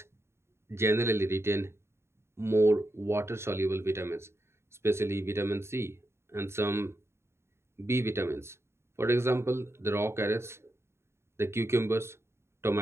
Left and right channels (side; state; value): left; late; 0.13 ms